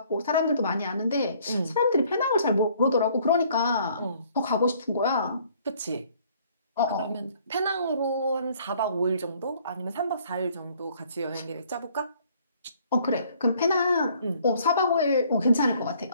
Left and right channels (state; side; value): inverted; both; correlation -0.61